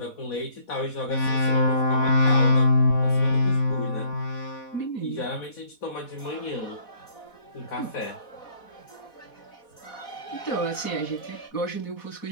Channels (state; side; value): late; right; 4.1 ms